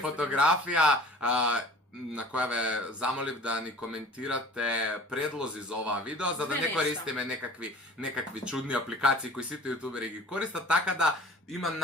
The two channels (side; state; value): both; normal; correlation 0.45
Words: на која ве замолив да ни коментирате предлози за оваа видео, за да не користиме некакви чудни апликации кои сите јутубери ги користат, така да има